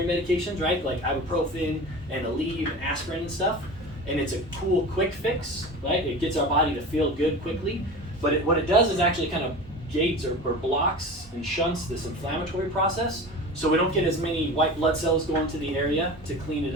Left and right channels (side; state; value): both; normal; correlation 0.33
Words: medications, right? Like ibuprofen and Aleve and aspirin and stuff. And it's a cool quick fix, right? It gets our body to feel good quickly. But what it does is actually kind of gates or blocks and shunts this inflammatory process, so we don't get as many white blood cells going to the area to clean it